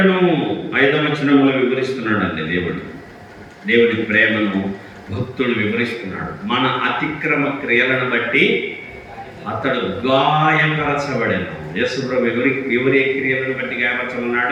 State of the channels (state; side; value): identical; both; correlation 1.00